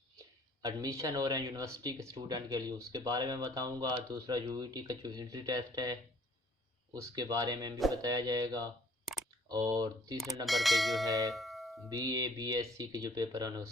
एडमिशन हो रहे हैं यूनिवर्सिटी के स्टूडेंट के लिए उसके बारे में बताऊँगा। दूसरा यूईटी का जो एंट्री टेस्ट है उसके बारे में भी बताया जाएगा, और तीसरे नंबर पे जो है बीए बीएससी के जो पेपर हैं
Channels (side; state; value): both; normal; correlation 0.58